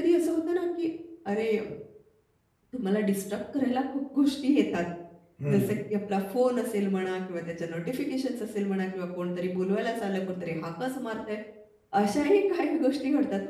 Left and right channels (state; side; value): identical; both; correlation 1.00